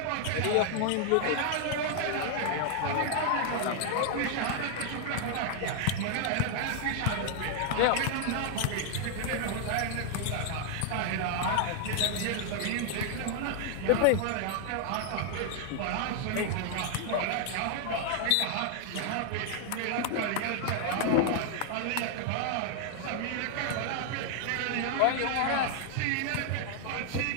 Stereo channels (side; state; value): both; different; correlation 0.00